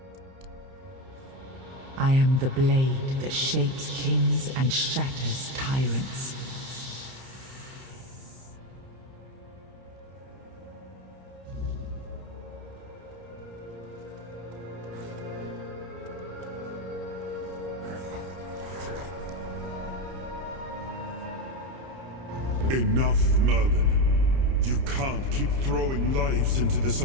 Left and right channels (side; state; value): left; late; 30 ms